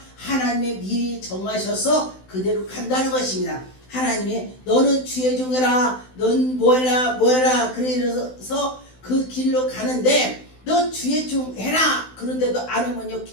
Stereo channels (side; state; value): right; late; 16 ms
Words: 하나님이 미리 정하셔서 그대로 간다는 것입니다. 하나님이 너는 주의 종해라, 넌 뭐해라 뭐해라 그래서 그 길로 가는데 너 주의 종 해라 그런데도 안 하면요